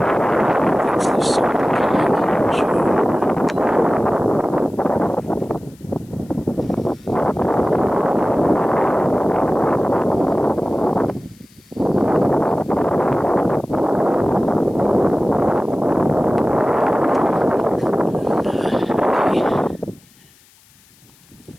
That's the summit climb, sure.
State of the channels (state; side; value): noise; left; hiss, 30 dB below the sound